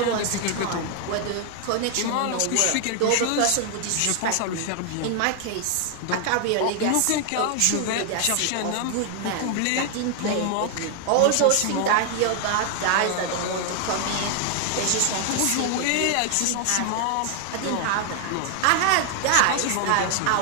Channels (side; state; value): both; different; correlation 0.00